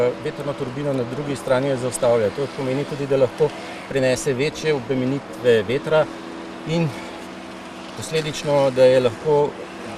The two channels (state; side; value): identical; both; correlation 1.00